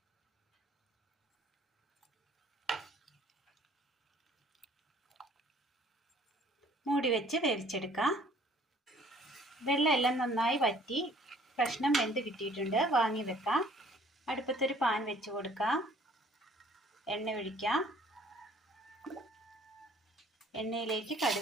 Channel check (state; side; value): normal; both; correlation 0.56